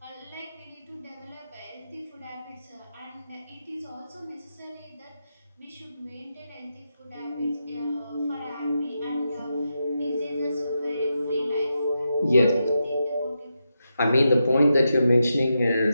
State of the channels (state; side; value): inverted; both; correlation -0.87